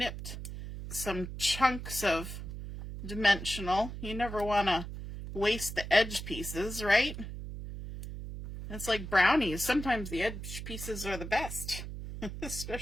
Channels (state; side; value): noise; right; hum, 8 dB below the sound